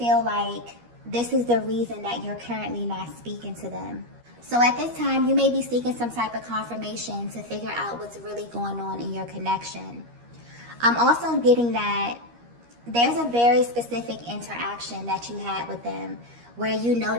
like this is the reason that you're currently not speaking to them. So at this time, you may be seeking some type of confirmation to figure out what's really going on in your connection. I'm also getting that there's a very specific interaction that you had with them where you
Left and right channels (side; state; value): left; late; 13 ms